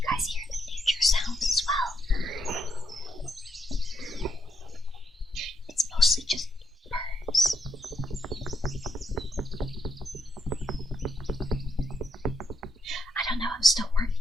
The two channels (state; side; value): normal; both; correlation 0.78